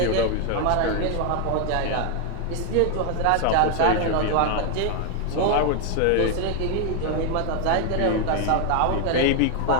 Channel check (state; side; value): different; both; correlation 0.01